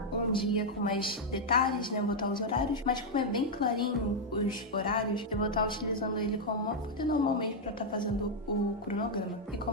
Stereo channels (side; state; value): both; normal; correlation -0.01